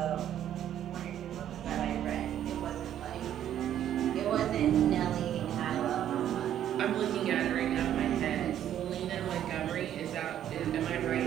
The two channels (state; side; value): quieter; left; 10.8 dB